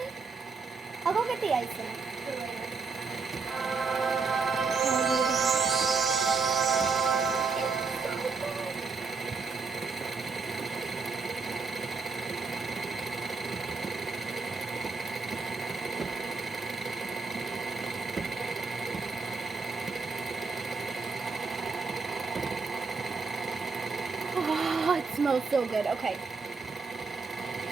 I'll go get the icing for later. smells so good. Okay.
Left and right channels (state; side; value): quieter; left; 4.6 dB